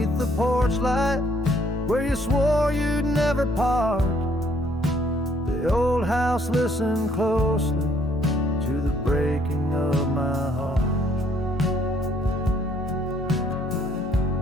the porch light, where you swore you'd never part, the old house listened closely to the breaking of my heart.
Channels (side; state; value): both; normal; correlation 0.65